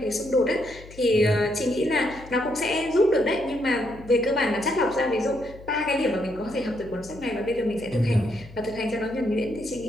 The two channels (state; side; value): noise; left; hum, 19 dB below the sound